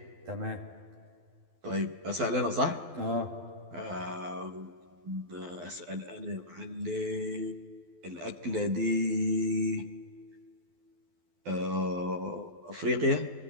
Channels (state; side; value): late; left; 12 ms